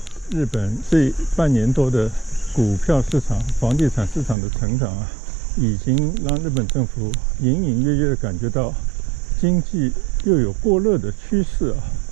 日本这半年多的股票市场、房地产市场的成长啊，已经让日本政府隐隐约约的感觉到经济又有过热的趋势啊。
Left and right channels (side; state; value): left; drops out; at 4.4 s